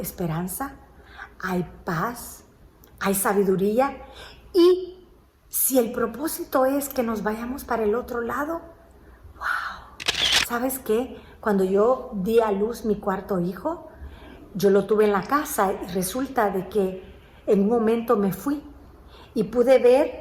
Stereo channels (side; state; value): both; identical; correlation 1.00